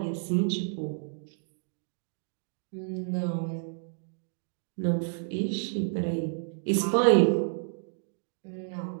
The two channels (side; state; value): left; silent; digital silence